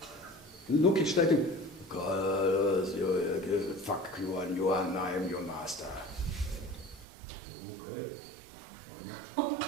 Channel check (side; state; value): left; drops out; at 7.1 s